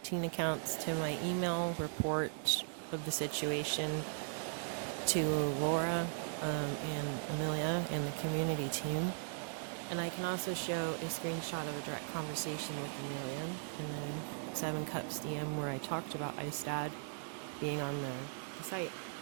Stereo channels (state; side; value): silent; left; digital silence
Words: teen accounts to my email report of the situation to Laura and Amelia and the community team. And I can also show a screenshot of a direct conversation with Amelia in the 7 Cups DM where I talked about Ice Dad being on the site